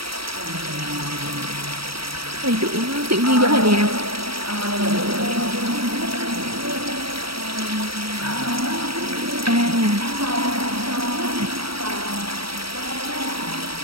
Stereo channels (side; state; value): left; late; 0.75 ms